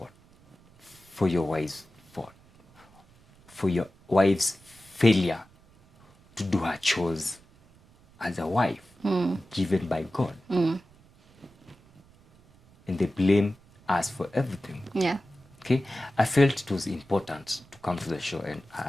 For your wife's fault. For your wife's failure to do her chores as a wife given by God. And they blame us for everything. Yeah. Okay? I felt it was important to come to the show and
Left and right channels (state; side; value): noise; right; rumble, 28 dB below the sound